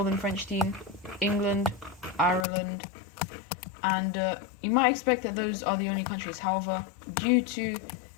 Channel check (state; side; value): drops out; right; at 2.5 s